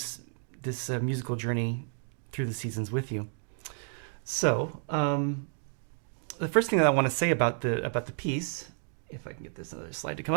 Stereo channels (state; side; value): silent; left; digital silence